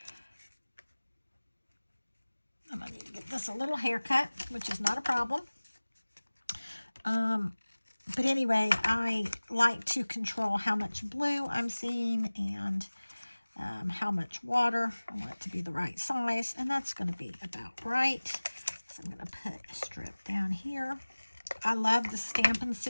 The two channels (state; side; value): inverted; both; correlation -1.00